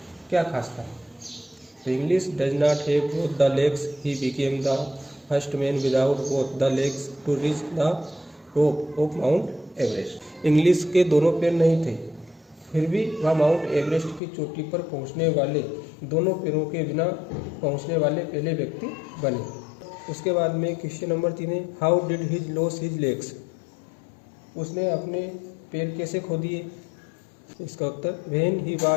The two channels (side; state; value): right; drops out; at 14.2 s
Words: क्या खास था। तो Inglis does not have both the legs, he became the first man without both the legs to reach the top of Mount Everest, Inglis के दोनों पैर नहीं थे फिर भी वह माउंट एवरेस्ट की चोटी पर पहुंचने वाले दोनों पैरों के बिना पहुंचने वाले पहले व्यक्ति बने। उसके बाद में क्वेश्चन नंबर 3 है how did his lose his legs, उसने अपने पैर कैसे खो दिए। इसका उत्तर when he